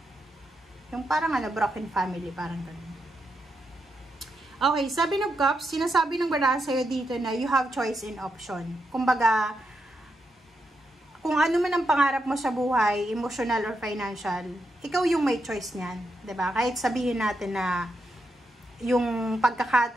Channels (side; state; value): both; normal; correlation 0.84